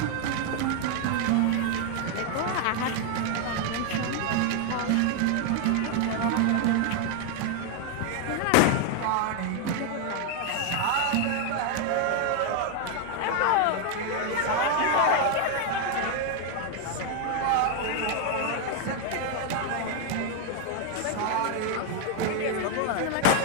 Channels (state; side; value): different; both; correlation 0.01